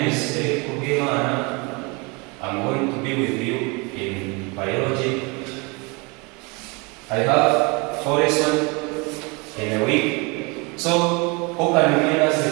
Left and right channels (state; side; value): quieter; left; 28.8 dB